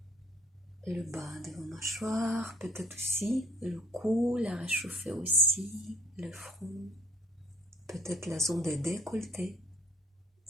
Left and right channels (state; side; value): normal; both; correlation 0.56